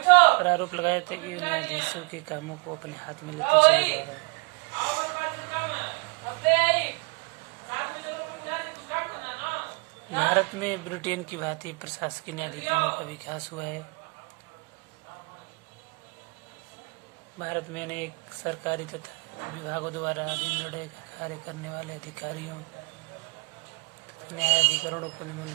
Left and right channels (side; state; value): left; quieter; 31.9 dB